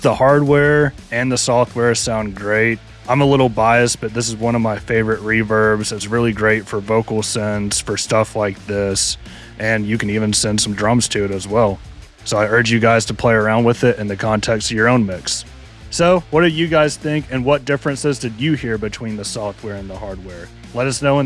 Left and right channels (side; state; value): both; identical; correlation 1.00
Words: the hardware and the software sound great. I'm a little biased, but this is one of my favorite reverbs. It's really great for vocal sends, for stuff like this, and you can even send some drums to it as well. So I urge you guys to play around with it in the context of your own mix. So what do you guys think, and what differences did you hear between the software and the hardware? Let us know in